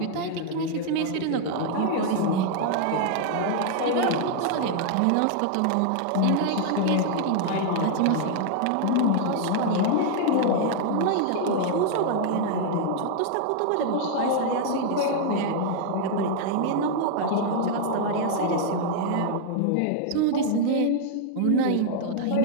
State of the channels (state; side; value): different; both; correlation 0.00